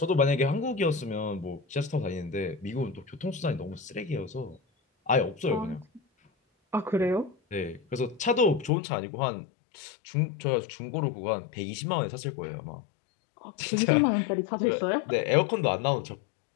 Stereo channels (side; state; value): right; drops out; at 8.7 s